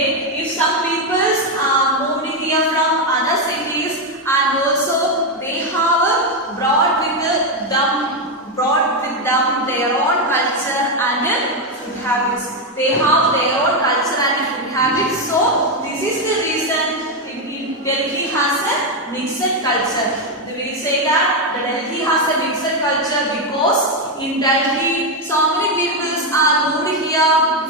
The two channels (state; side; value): normal; both; correlation 0.06